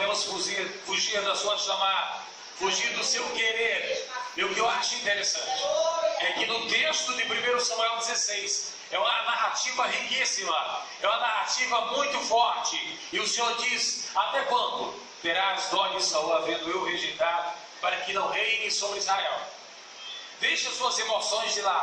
fugir da sua chamada, fugir do seu querer. E o que eu acho interessante é que no texto de 1 Samuel 16 é uma narrativa riquíssima, é uma narrativa muito forte. E o Senhor diz: até quando terás dó de Saul, havendo eu rejeitado, para que não reine sobre Israel? Deixa suas emoções de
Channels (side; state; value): both; identical; correlation 1.00